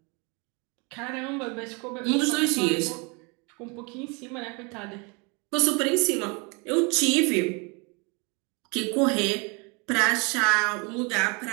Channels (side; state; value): left; quieter; 30.7 dB